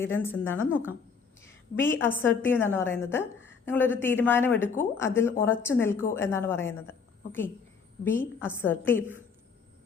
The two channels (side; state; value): right; quieter; 5.6 dB